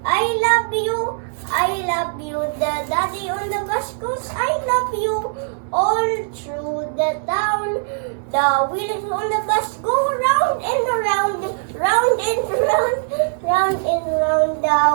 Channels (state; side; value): silent; left; 62 dB below the other